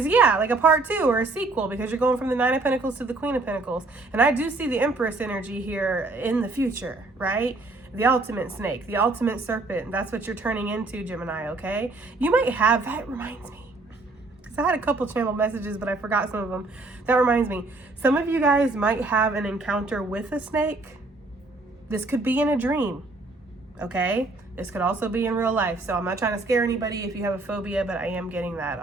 yeah, like a part 2 or a sequel, because you're going from the 9 of Pentacles to the Queen of Pentacles. And I do see the Empress energy here in the future, right? The ultimate snake, the ultimate serpent. That's what you're turning into, Gemini, okay? You might have, that reminds me, because I had a couple channel messages, but I forgot some of them. That reminds me, some of you guys might have an encounter with a snake. This could be in a dream, okay? This could also be in real life. So I'm not trying to scare anybody if you have a phobia, but I am getting that,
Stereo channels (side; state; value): left; quieter; 3.3 dB